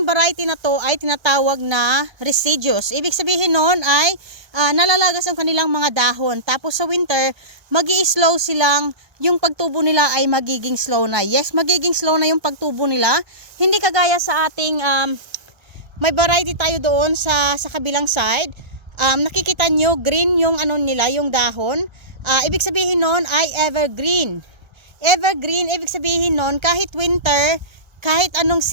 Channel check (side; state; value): left; late; 1.3 ms